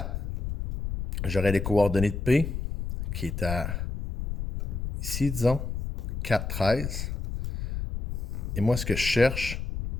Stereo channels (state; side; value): noise; left; rumble, 4 dB below the sound